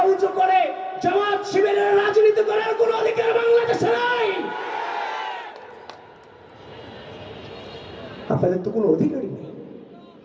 উঁচু করে জামাত শিবিরের রাজনীতি করার কোনো অধিকার বাংলাদেশে নাই। আপনাদের তো কোনো অধিকারই নেই।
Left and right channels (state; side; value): identical; both; correlation 1.00